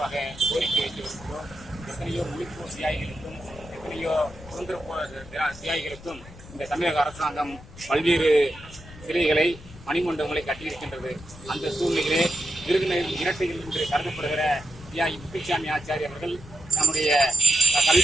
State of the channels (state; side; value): noise; left; rumble, 18 dB below the sound